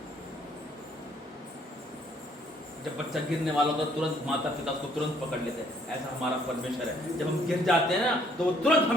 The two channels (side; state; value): both; normal; correlation 0.64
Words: जब बच्चा गिरने वाला होता तुरंत माता पिता उसको तुरंत पकड़ लेते हैं। ऐसा हमारा परमेश्वर है, जब हम गिर जाते हैं ना तो वो तुरंत